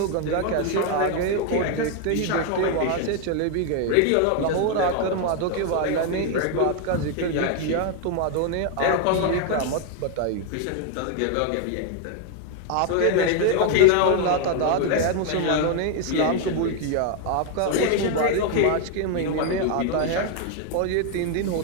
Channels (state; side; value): different; both; correlation 0.01